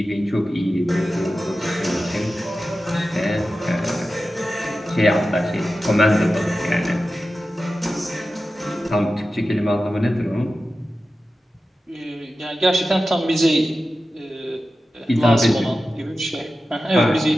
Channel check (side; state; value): both; normal; correlation 0.93